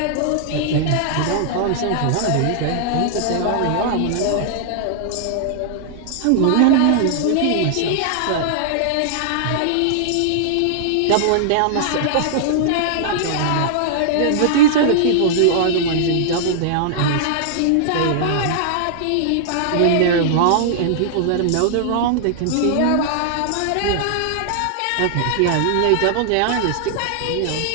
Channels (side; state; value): both; different; correlation -0.01